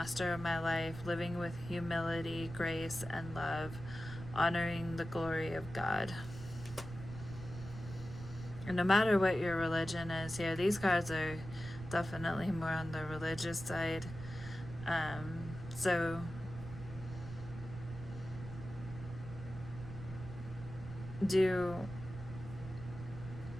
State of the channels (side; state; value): right; noise; rumble, 11 dB below the sound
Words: of my life, living with humility, grace, and love, honoring the glory of God. And no matter what your religion is here, these cards are definitely more on the religious side. So do